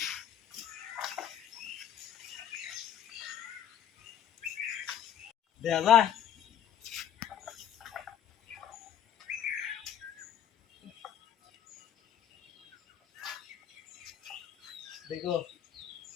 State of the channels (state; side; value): quieter; right; 9.7 dB